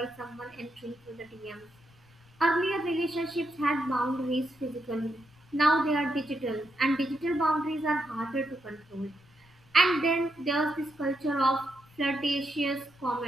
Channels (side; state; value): left; noise; rumble, 28 dB below the sound